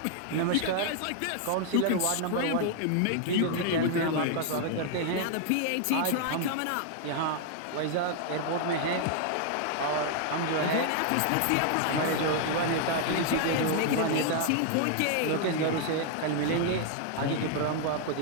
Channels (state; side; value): different; both; correlation 0.00